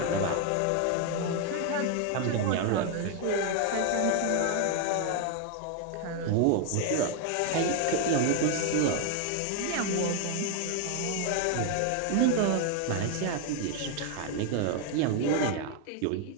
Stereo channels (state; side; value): different; both; correlation 0.01